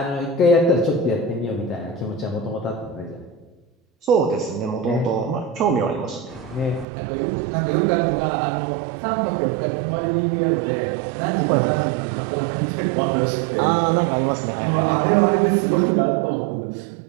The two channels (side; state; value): left; drops out; at 6.9 s